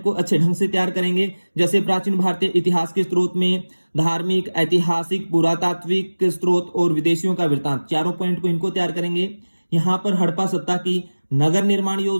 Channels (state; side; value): inverted; both; correlation -1.00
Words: को अच्छे ढंग से तैयार करेंगे। जैसे प्राचीन भारतीय इतिहास के स्रोत में धार्मिक, ऐतिहासिक, पुरातात्विक स्रोत और विदेशियों का वृत्तांत, चारों पॉइंट को इनको तैयार करेंगे। यहाँ पर हड़प्पा सप्ताह की नगर निर्माण